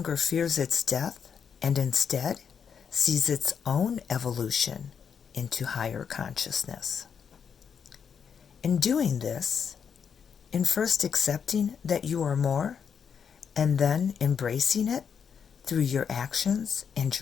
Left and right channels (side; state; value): right; quieter; 7.0 dB